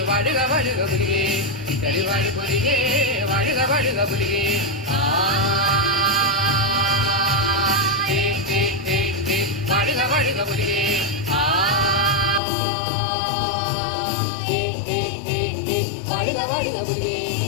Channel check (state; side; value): drops out; right; at 12.4 s